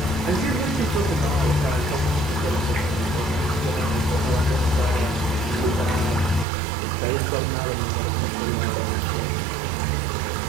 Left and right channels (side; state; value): left; drops out; at 6.5 s